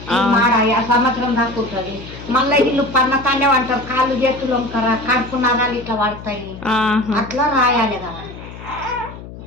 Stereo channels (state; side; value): noise; left; hum, 14 dB below the sound